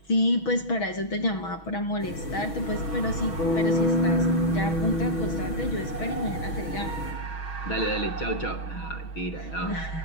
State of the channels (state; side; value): late; right; 6.2 ms